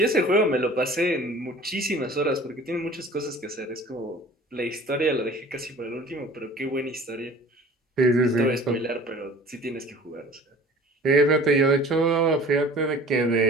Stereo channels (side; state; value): both; normal; correlation 0.46